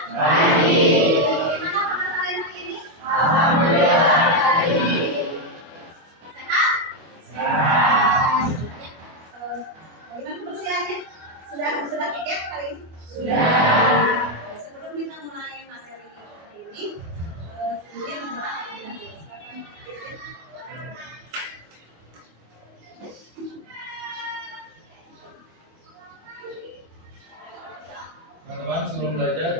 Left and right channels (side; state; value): left; late; 25 ms